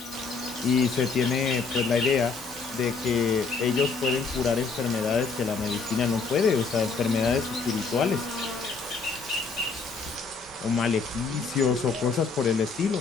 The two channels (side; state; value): right; quieter; 4.7 dB